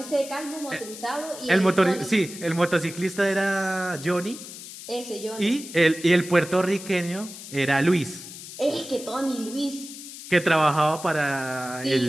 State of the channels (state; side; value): noise; left; hiss, 13 dB below the sound